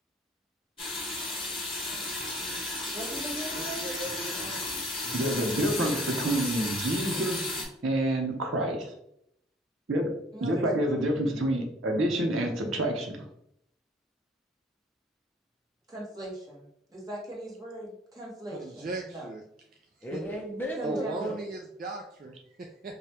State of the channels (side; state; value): both; normal; correlation 0.54